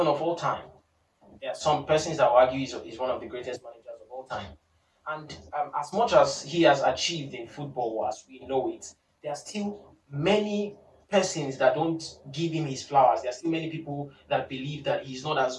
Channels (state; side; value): identical; both; correlation 1.00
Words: of all time. There are some persons that will argue he's one of the greatest managers of all time. And as much as he has achieved in football as we know it, there are still many persons that don't give him his flowers. There are still many people that believe that he's not